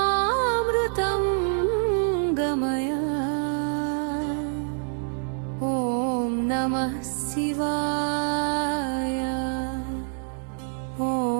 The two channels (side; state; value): left; silent; 61 dB below the other